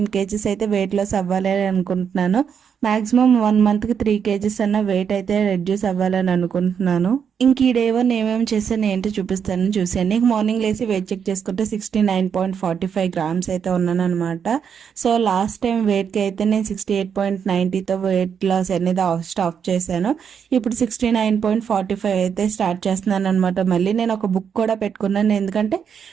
kgs అయితే వెయిట్ లాస్ అవ్వాలి అని అనుకుంటున్నాను. మాక్సిమం 1 monthకి 3 kgs అన్న వెయిట్ అయితే రెడ్యూస్ అవ్వాలని అనుకుంటున్నాను. ఇంక ఈ డే 1 ఏమేమి చేశాను ఏంటో చూపిస్తాను, చూసాను. మార్నింగ్ లేసి వెయిట్ చెక్ చేసుకుంటే 69.45 grams అయితే ఉన్నాను అనమాట. సో లాస్ట్ టైం వెయిట్కి అయితే నేను 68.90తో వెయిట్ లాస్ అనేది స్టాప్ చేశాను. ఇప్పుడు 69.45 అయితే స్టార్ట్ చేస్తున్నాను అనమాట. మళ్ళీ నేను ఒక బుక్ కూడా పెట్టుకున్నాను, ఎందుకంటే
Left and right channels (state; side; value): quieter; left; 7.3 dB